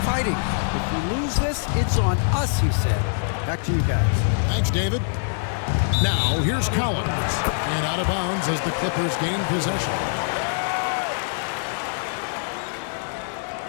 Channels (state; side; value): silent; right; digital silence